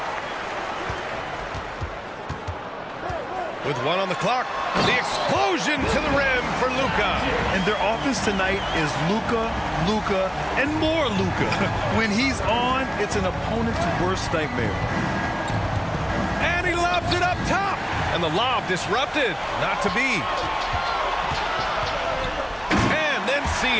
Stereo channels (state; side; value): identical; both; correlation 1.00